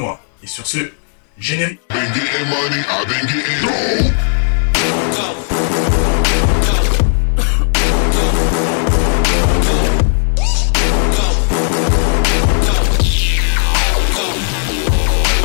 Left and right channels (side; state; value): right; silent; digital silence